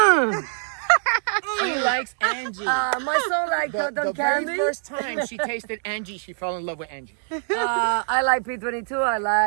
She likes Angie. My son likes cotton the candy. very first time she tasted Angie, she fell in love with Angie. I like P22. I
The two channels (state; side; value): silent; left; digital silence